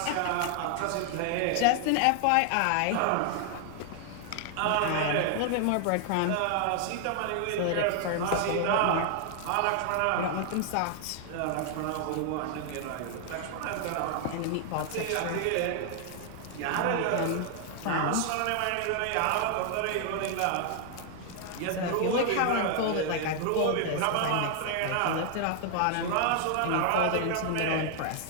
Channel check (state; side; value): different; both; correlation 0.00